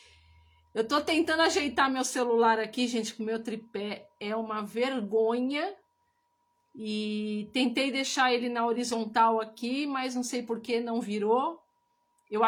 Eu tô tentando ajeitar meu celular aqui, gente, com o meu tripé. É uma vergonha. E tentei deixar ele na horizontal aqui, mas não sei por que não virou. Eu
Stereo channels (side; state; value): both; identical; correlation 1.00